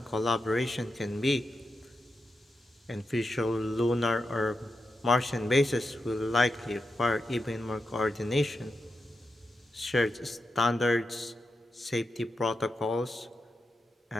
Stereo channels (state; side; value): normal; both; correlation 0.88